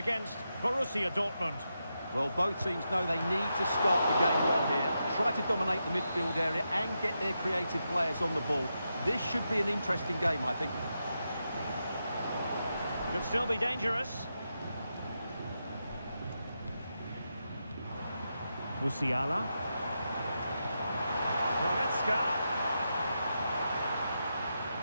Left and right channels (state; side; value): inverted; both; correlation -0.86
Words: Borussia Dortmund. Well, both teams know they need to start the game well here. Try to dominate the midfield area and get their creative players on the ball. This should be an interesting game, I think. Could still be dangerous. Musiala. Goretzka.